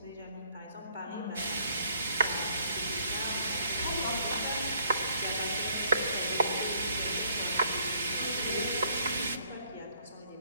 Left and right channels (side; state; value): both; inverted; correlation -0.64